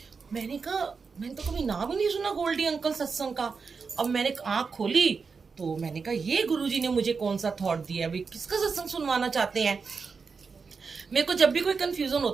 मैंने कहा मैंने तो कभी नाम ही नहीं सुना गोल्डी अंकल सत्संग का। अब मैंने आंख खोली तो मैंने कहा ये गुरुजी ने मुझे कौन सा थॉट दिया, भाई किसका सत्संग सुनवाना चाहते हैं। मेरे को जब भी कोई कंफ्यूजन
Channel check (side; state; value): left; quieter; 5.1 dB